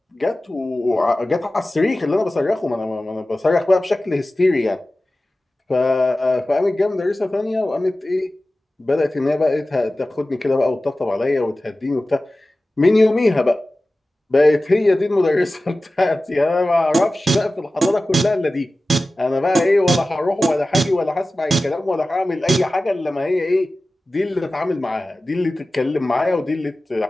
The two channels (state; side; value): normal; both; correlation 0.96